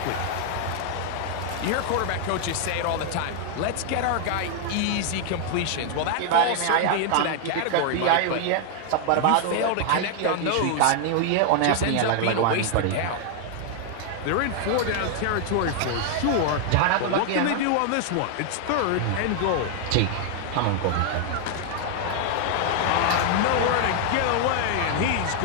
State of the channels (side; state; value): both; different; correlation 0.00